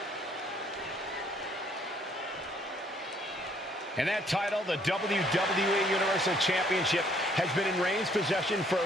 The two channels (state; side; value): normal; both; correlation 0.64